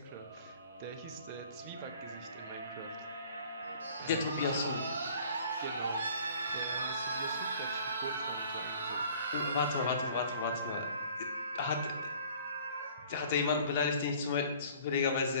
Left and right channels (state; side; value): inverted; both; correlation -0.51